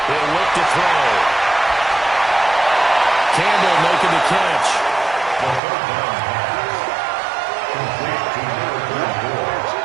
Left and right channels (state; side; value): drops out; left; at 5.6 s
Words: He'll look to throw. Campbell making the catch.